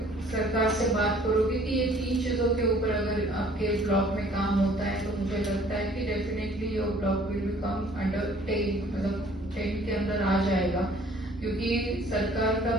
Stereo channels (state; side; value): normal; both; correlation 0.55